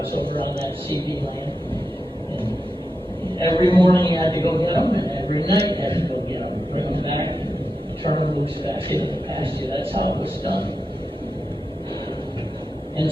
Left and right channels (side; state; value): both; normal; correlation 0.89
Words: over on that CD land. And every morning you had to go get them, and every night you had to go get them, bring them back, and turn them loose back into the pasture. That's how it was done. And